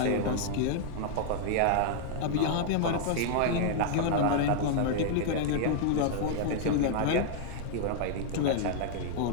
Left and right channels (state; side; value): different; both; correlation -0.01